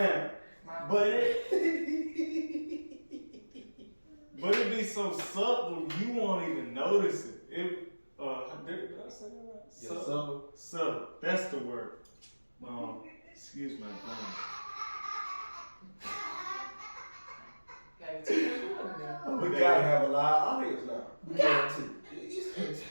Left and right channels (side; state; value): both; inverted; correlation -1.00